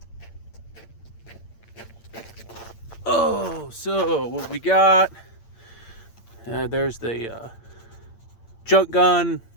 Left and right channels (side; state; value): right; late; 8.8 ms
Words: Oh, so what we got, there's the junk gun,